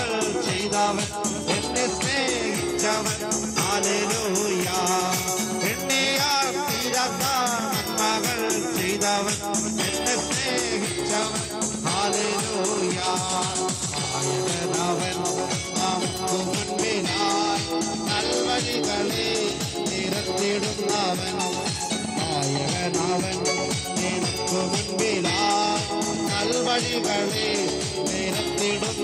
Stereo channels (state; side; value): identical; both; correlation 1.00